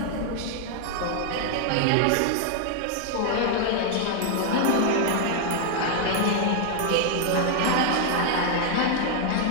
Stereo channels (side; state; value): both; different; correlation 0.00